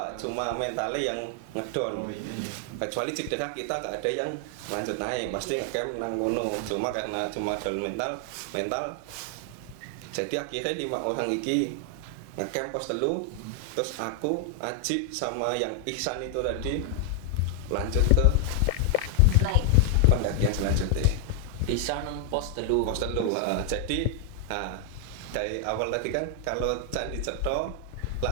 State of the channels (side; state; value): both; different; correlation 0.00